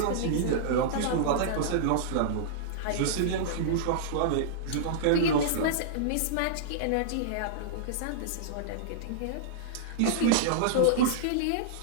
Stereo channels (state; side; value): different; both; correlation -0.02